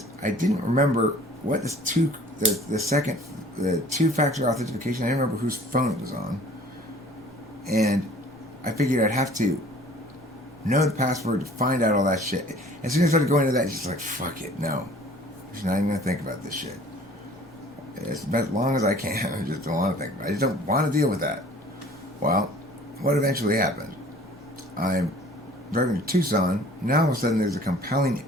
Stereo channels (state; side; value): normal; both; correlation 0.51